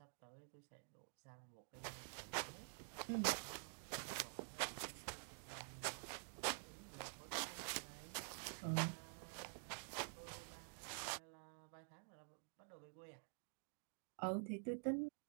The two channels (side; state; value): left; silent; digital silence